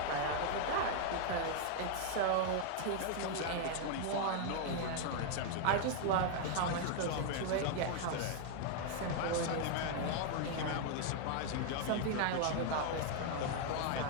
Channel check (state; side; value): different; both; correlation 0.00